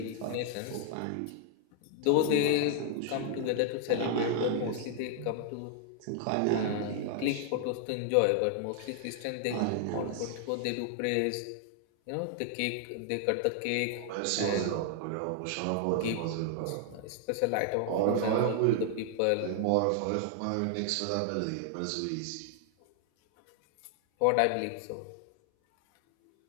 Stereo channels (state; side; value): different; both; correlation 0.00